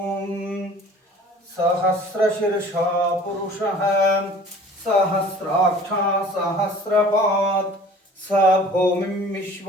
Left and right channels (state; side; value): normal; both; correlation 0.47